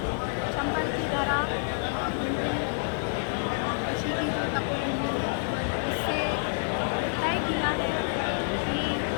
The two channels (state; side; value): silent; right; 56 dB below the other